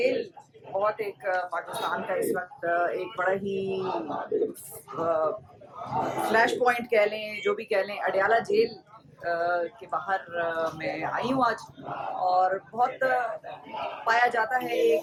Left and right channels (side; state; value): both; identical; correlation 1.00